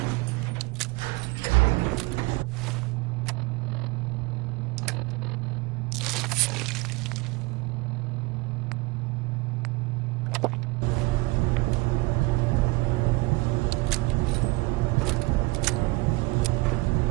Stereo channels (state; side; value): quieter; left; 23.5 dB